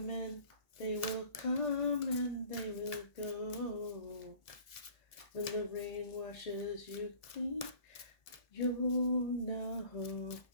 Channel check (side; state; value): right; late; 1.7 ms